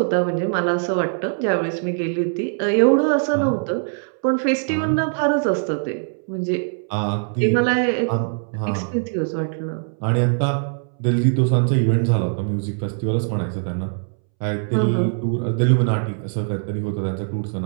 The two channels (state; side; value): silent; left; 64 dB below the other